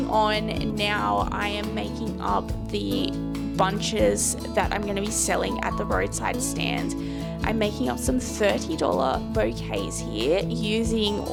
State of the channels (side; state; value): both; identical; correlation 1.00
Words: on now, I am making up the bunches that I'm going to be selling at the roadside stand. I'm making up some $30 bouquets here using